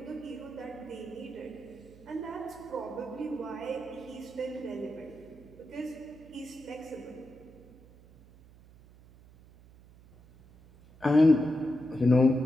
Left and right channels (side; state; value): right; noise; hum, 23 dB below the sound